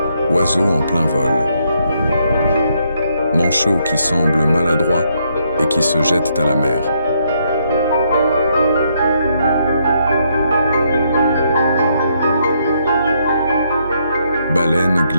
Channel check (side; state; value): both; inverted; correlation -0.74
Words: Oiseau en plein vol, manchot qui semble maladroit et qui se jette à la mer. Baleine